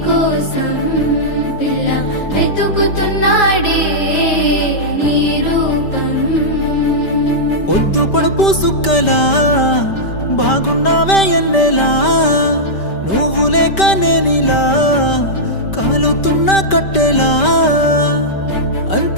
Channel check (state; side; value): late; right; 5.1 ms